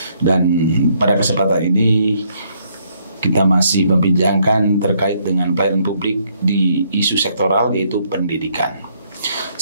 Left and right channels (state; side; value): inverted; both; correlation -0.70